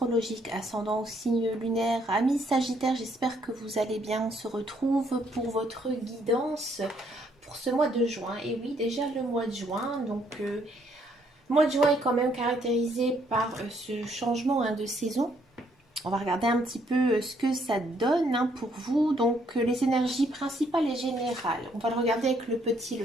ascendant ou signe lunaire. Amis Sagittaires, j'espère que vous allez bien. On se retrouve pour votre guidance pour ce mois de juin. Et oui, déjà le mois de juin. Le mois de juin est quand même caractérisé par ce changement de saison. On va regarder un petit peu ce que ça donne pour vous. Les énergies principales et générales. On va le regarder avec le petit,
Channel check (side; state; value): both; normal; correlation 0.69